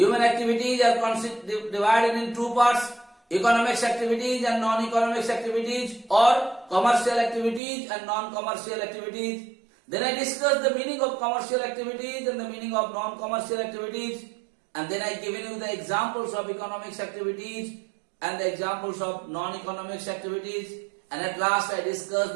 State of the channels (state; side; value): drops out; left; at 7.6 s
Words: activities are divided in two parts: economics activities and non-economics activities, or commercial activities and non-commercial activities. Then I discussed the meaning of commercial activities and the meaning of non-commercial activities. And then I given you the examples of economics activities and the examples of non-economics activities. And at last I discussed